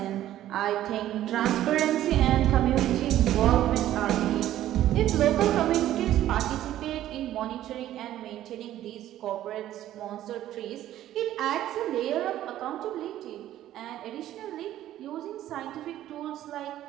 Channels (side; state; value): left; quieter; 13.0 dB